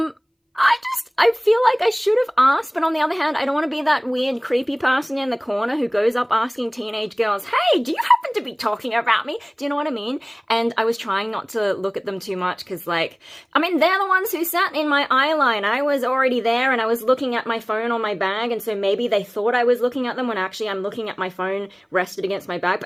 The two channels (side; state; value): both; identical; correlation 1.00